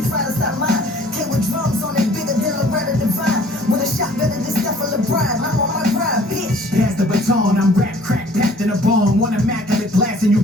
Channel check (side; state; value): both; normal; correlation 0.54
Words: try to stop mine. Came with drums on it bigger than Loretta Devine. With a shot better than Stephen LeBron. I'm on my grind, bitch. Pass the baton, I'm rap crack, packed in a bone. One immaculate blast and you